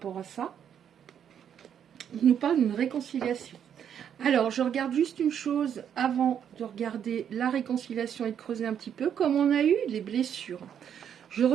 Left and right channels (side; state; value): left; quieter; 8.7 dB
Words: à ça. On nous parle d'une réconciliation. Alors, je regarde juste une chose avant de regarder la réconciliation et de creuser un petit peu. Comme on a eu les blessures, je